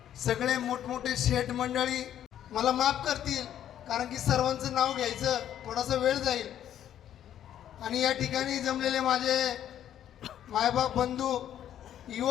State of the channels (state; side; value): quieter; right; 10.7 dB